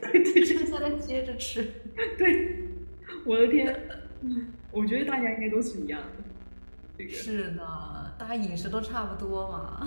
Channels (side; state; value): both; inverted; correlation -1.00